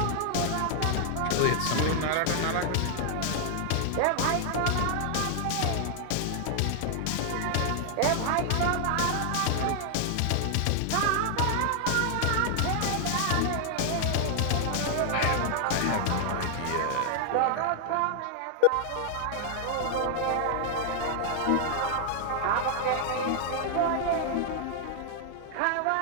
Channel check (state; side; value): different; both; correlation 0.00